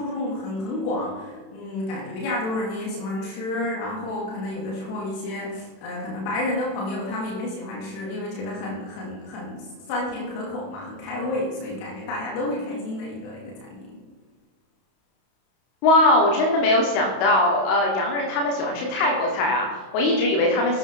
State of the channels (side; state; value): right; late; 31 ms